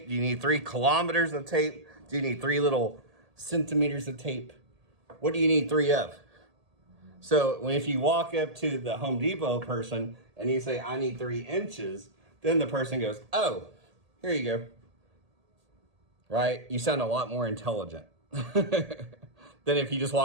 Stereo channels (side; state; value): left; late; 1.8 ms